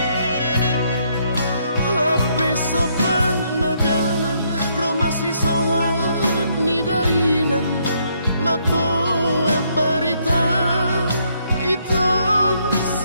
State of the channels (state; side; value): inverted; both; correlation -0.72